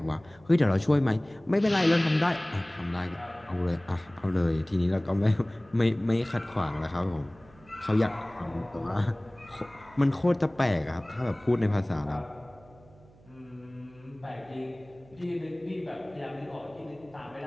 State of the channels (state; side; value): noise; right; hum, 26 dB below the sound